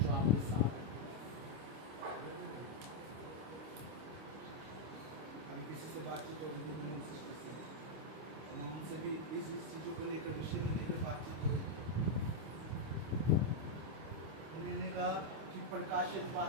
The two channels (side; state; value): left; late; 25 ms